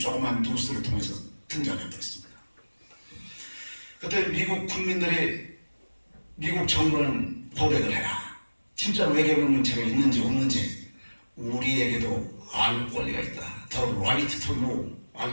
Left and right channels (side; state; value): both; inverted; correlation -1.00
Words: 뉴스를 통해서 등장해버렸습니다. 그때 미국 국민들이 미국 정부는 고백을 해라. 진짜 외계 문명체가 있는지 없는지 우리에게도 알 권리가 있다. The right to know.